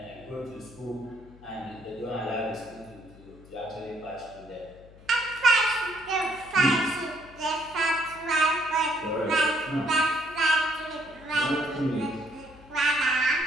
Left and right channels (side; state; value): left; noise; hum, 22 dB below the sound